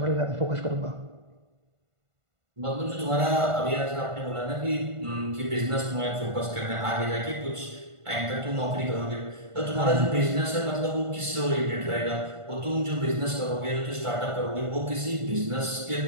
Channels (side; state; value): left; late; 1.5 ms